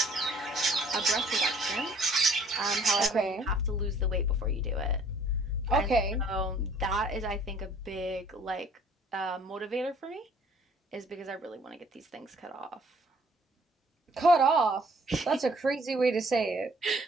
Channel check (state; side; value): normal; both; correlation 0.58